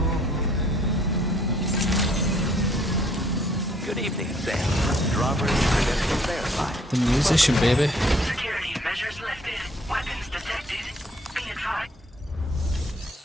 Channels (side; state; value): both; normal; correlation 0.62